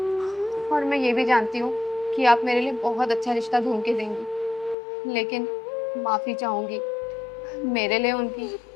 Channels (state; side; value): drops out; right; at 4.8 s